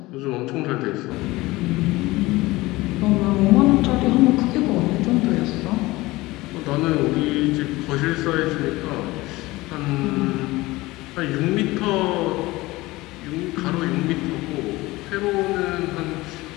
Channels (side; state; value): right; quieter; 20.0 dB